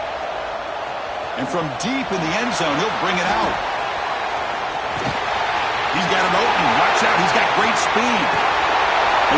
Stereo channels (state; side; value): identical; both; correlation 1.00